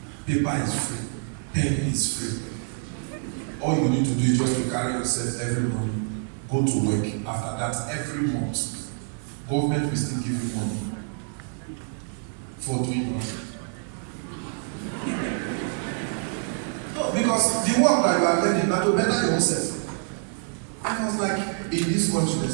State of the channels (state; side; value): silent; left; 55 dB below the other